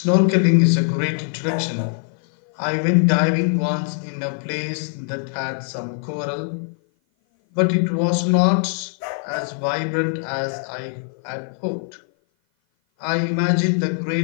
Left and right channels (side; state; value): right; silent; 56 dB below the other